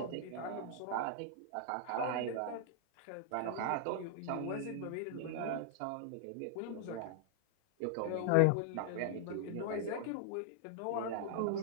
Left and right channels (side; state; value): both; different; correlation 0.00